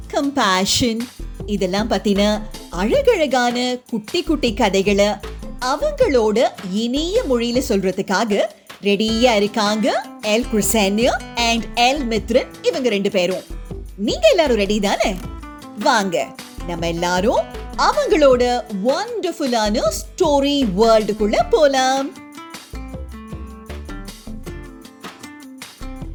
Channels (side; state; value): both; identical; correlation 1.00